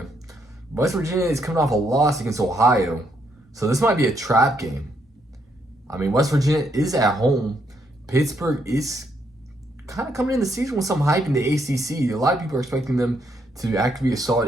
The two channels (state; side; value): normal; both; correlation 0.75